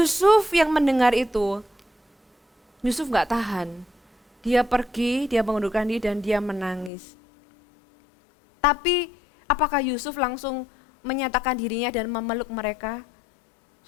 yang mendengar itu, Yusuf gak tahan. Dia pergi, dia mengundurkan diri dan dia menangis. Tapi apakah Yusuf langsung menyatakan dirinya dan memeluk mereka?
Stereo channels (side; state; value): right; drops out; at 6.9 s